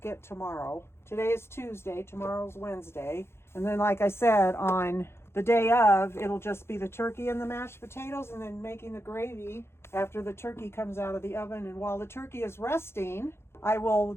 it tomorrow. Today is Tuesday, tomorrow's Wednesday. And then, like I said, on the day of, it'll just be the turkey and the mashed potatoes, and then making the gravy after the turkey comes out of the oven. And while the turkey is resting, I will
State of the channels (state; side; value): late; right; 0.12 ms